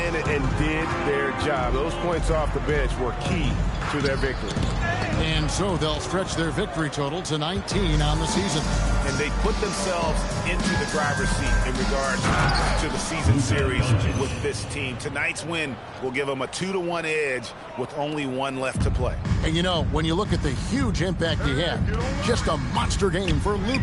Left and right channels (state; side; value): identical; both; correlation 1.00